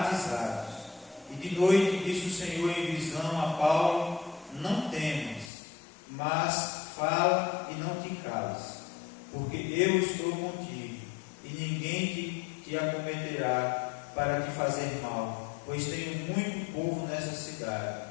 E de noite disse o Senhor em visão a Paulo: não temas, mas fala e não te cales, porque eu estou contigo, e ninguém te acometerá para te fazer mal, pois tenho muito povo nessa cidade.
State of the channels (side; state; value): right; drops out; at 5.5 s